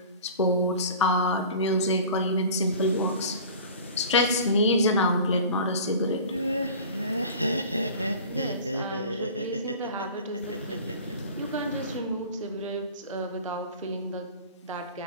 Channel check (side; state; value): both; inverted; correlation -0.40